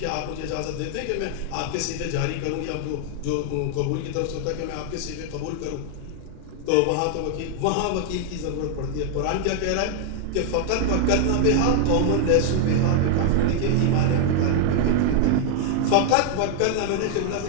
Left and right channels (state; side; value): different; both; correlation 0.00